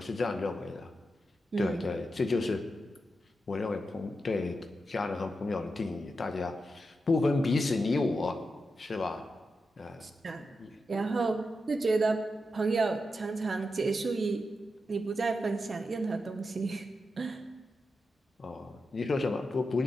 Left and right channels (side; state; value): both; normal; correlation 0.88